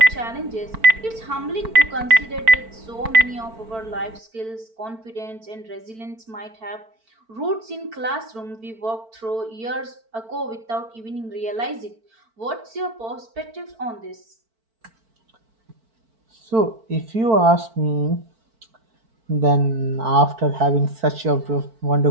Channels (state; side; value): late; left; 4.5 ms